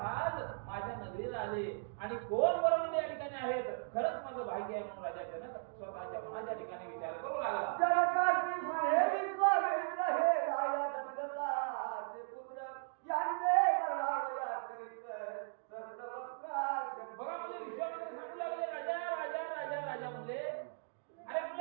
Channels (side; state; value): left; silent; digital silence